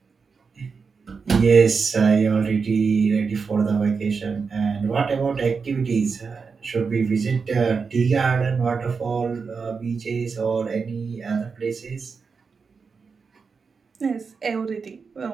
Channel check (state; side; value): quieter; left; 5.2 dB